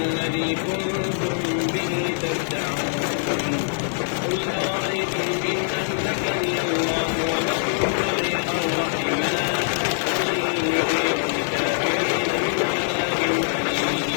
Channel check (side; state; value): right; silent; digital silence